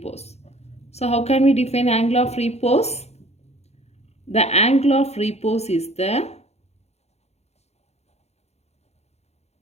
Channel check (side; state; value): right; late; 0.31 ms